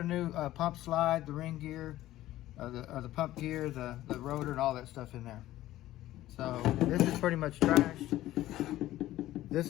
new pump slide, the ring gear, the pump gear, the rotor, and all that stuff in there. So this is pretty much trashed. This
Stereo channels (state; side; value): quieter; right; 14.9 dB